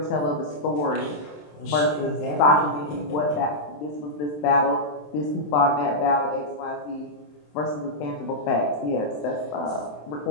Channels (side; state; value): right; late; 27 ms